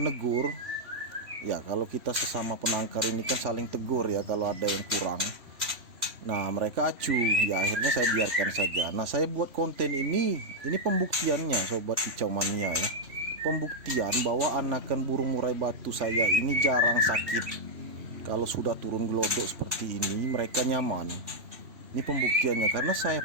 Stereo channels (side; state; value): left; late; 3.1 ms